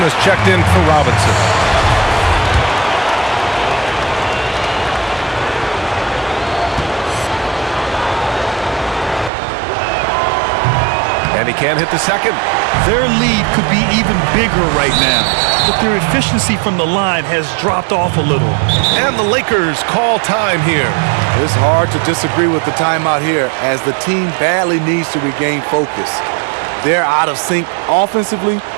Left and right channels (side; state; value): left; drops out; at 9.3 s